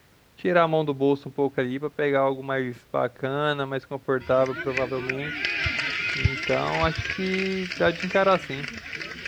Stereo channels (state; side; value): identical; both; correlation 1.00